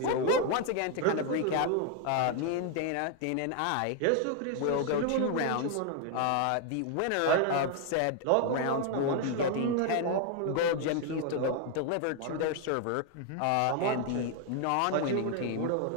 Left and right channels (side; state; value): both; different; correlation 0.00